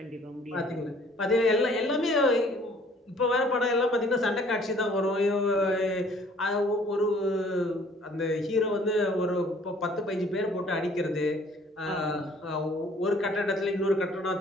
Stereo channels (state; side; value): normal; both; correlation 0.57